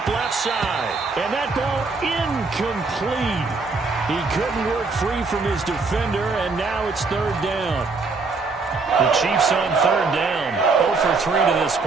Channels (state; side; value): quieter; left; 4.1 dB